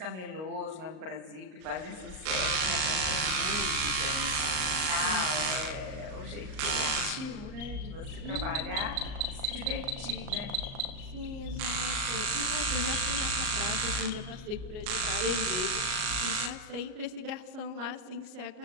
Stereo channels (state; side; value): late; left; 38 ms